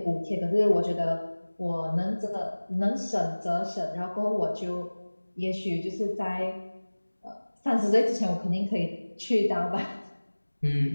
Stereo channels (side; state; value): both; inverted; correlation -1.00